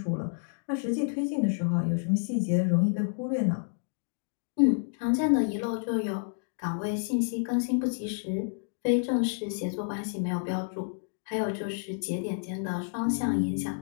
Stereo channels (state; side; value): silent; right; digital silence